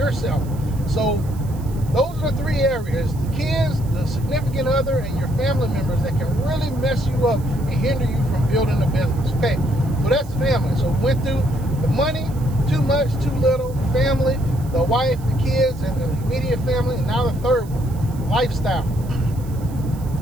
So those are the three areas: the kids, the significant other, and your family members that can really mess you up and hinder you from building a business. Okay, so that's family. So we went through the money, too much, too little, the family, the wife, the kids, and the immediate family, and now the third one, lifestyle.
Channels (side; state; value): right; noise; hiss, 23 dB below the sound